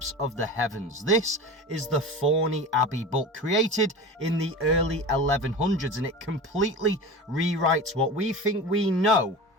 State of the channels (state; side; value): normal; both; correlation 0.31